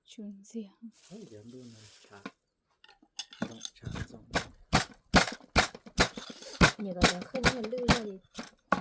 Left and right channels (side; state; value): both; identical; correlation 1.00